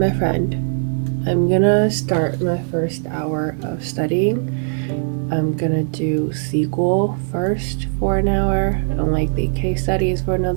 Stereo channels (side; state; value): left; silent; digital silence